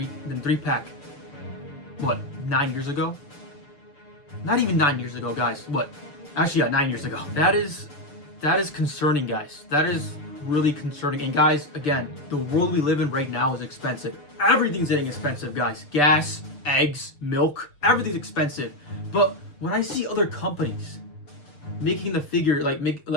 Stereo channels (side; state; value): right; late; 6.8 ms